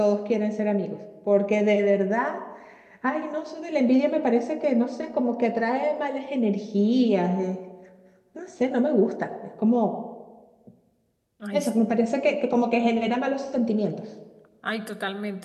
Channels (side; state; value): both; identical; correlation 1.00